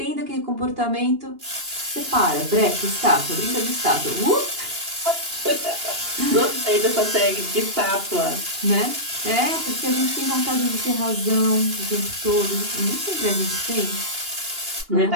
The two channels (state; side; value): late; left; 2.8 ms